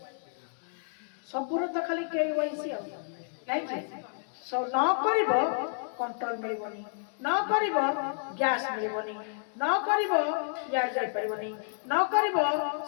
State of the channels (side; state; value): right; silent; 58 dB below the other